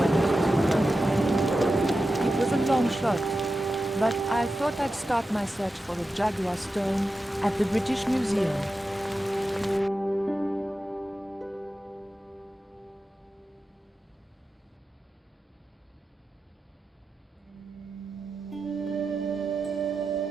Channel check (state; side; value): normal; both; correlation 0.92